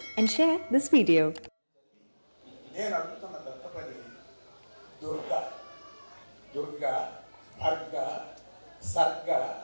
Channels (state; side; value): inverted; both; correlation -1.00